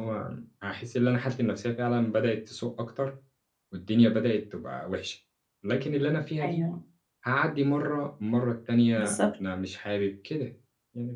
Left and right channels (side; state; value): both; identical; correlation 1.00